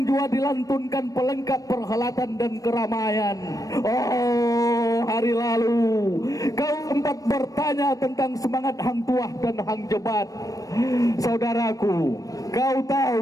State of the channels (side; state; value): right; late; 0.17 ms